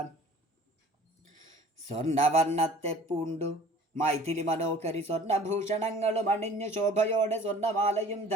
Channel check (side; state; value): both; normal; correlation 0.47